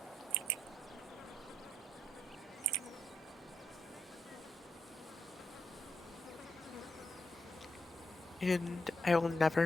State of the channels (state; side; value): normal; both; correlation 0.82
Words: And I will